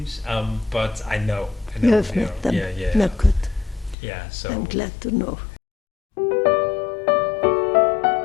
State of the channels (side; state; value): right; drops out; at 4.0 s